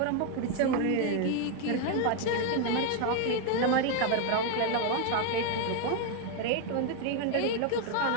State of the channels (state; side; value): different; both; correlation 0.01